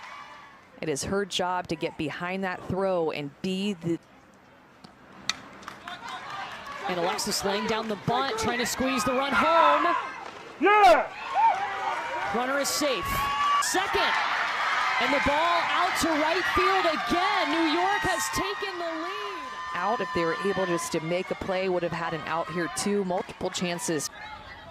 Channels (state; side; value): identical; both; correlation 1.00